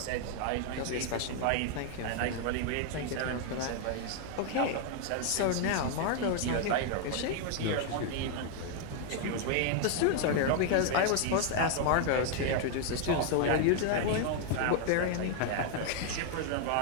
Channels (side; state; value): both; different; correlation 0.00